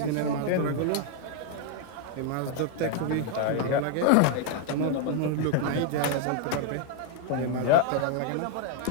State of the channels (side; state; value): both; different; correlation 0.00